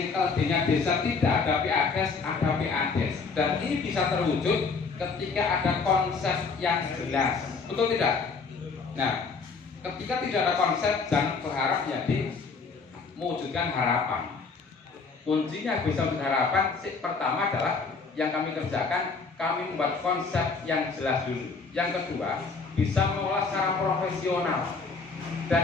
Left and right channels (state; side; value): quieter; right; 4.7 dB